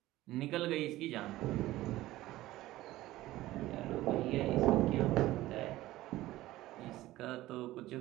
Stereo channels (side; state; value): left; quieter; 16.4 dB